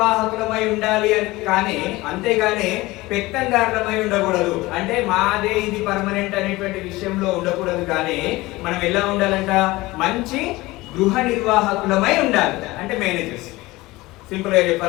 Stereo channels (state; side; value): quieter; right; 20.1 dB